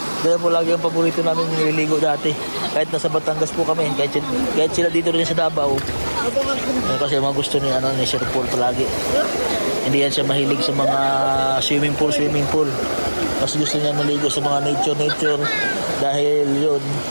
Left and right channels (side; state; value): both; inverted; correlation -1.00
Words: Kaya po lagi ang paborito namin nililigo dati. Kahit nasa Batangas po kami. Kahit sila dito rin sa Davao. Kasi mga gusto ni, ni Sir Paul palagi. Hindi yan siya mahilig sa mga swimming pool. Mas gusto niya maligo sa mga nature. Dahil yun,